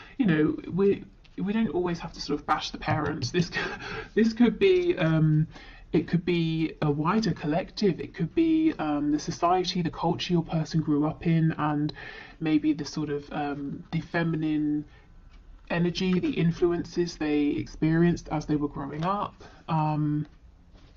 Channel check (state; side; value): identical; both; correlation 1.00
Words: We don't always have to sort of bash the parents. This could be it could be a wider collective. It could be the society, the culture your person grew up in, and maybe the sort of the feminine energy, the influences they experienced as they were growing up. We'll